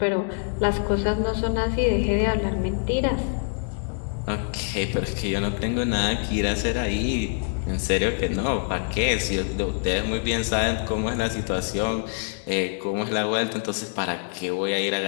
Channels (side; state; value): right; silent; 59 dB below the other